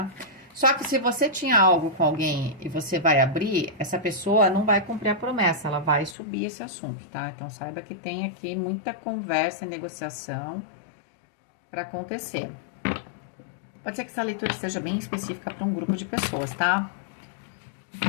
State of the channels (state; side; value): drops out; right; at 6.2 s